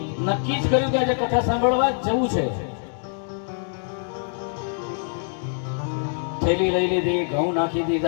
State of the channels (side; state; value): right; silent; 62 dB below the other